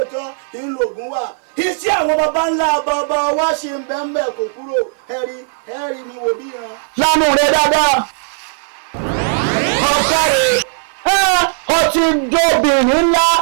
ńlọgùn wà iṣẹ́ àwọn baba ńlá bàbá wa ṣe ń bẹ́ẹ̀ kò kúrò ẹ̀rí mi wò bí yan. lánàá rẹ dáadáa ọtí jóbìnrin ńlá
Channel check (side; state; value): left; silent; 58 dB below the other